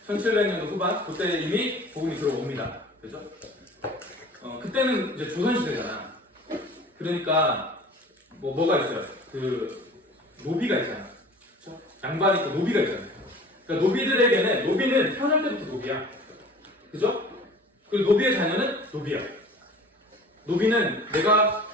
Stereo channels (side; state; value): both; normal; correlation 0.44